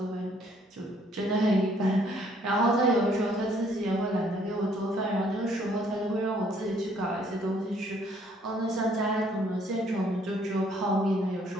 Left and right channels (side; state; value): both; normal; correlation 0.64